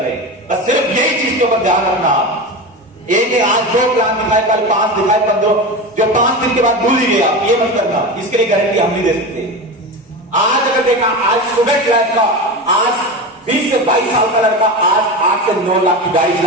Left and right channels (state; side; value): normal; both; correlation 0.24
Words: हैं। बस सिर्फ यही चीज के ऊपर ध्यान रखना। एक आज 2 प्लान दिखाए, कल 5 दिखाए, 15, जो 5 दिन के बाद भूल ही गया, ये मत करना। इसके लिए गारंटी हम नहीं दे सकते। आज अगर देखा, आज स्टूडेंट लाइफ का, आज 20 से 22 साल का लड़का आज 8 से 9 लाख की गाड़ी